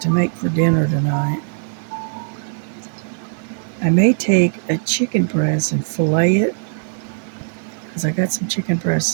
to make for dinner tonight. I may take a chicken breast and fillet it because I got some chicken breasts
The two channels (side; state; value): left; silent; digital silence